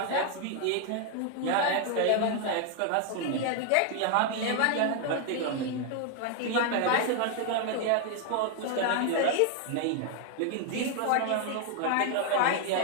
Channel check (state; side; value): different; both; correlation 0.00